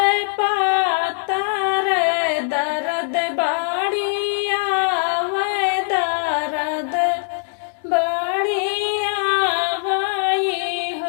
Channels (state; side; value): silent; right; digital silence